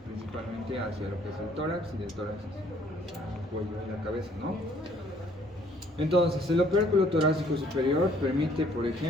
principalmente hacia lo que es el tórax y del tórax hacia el cuello y la cabeza, ¿no? Entonces, el opérculo torácico superior permite, por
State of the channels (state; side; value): normal; both; correlation 0.62